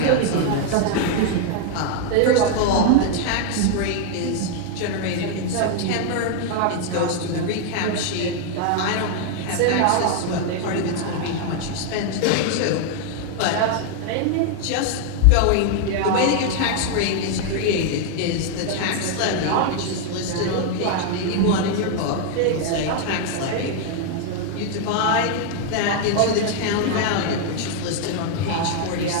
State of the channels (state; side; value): different; both; correlation 0.00